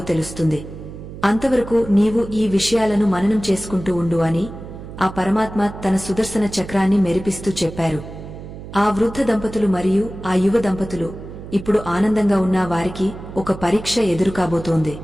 తెలుస్తుంది. అంతవరకు నీవు ఈ విషయాలను మననం చేసుకుంటూ ఉండు అని ఆ పరమాత్మ తన సుదర్శన చక్రాన్ని మెరిపిస్తూ చెప్పారు. ఆ వృద్ధ దంపతులు మరియు ఆ యువ దంపతులు ఇప్పుడు ఆనందంగా ఉన్న వారికి ఒక పరీక్ష ఎదురుకాబోతోంది.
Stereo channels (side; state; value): right; noise; hum, 13 dB below the sound